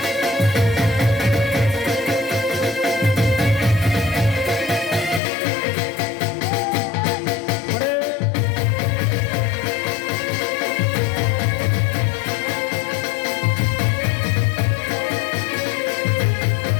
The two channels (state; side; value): drops out; right; at 5.2 s